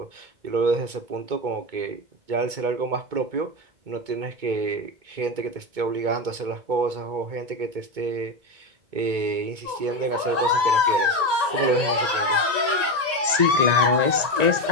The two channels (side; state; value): left; late; 1.9 ms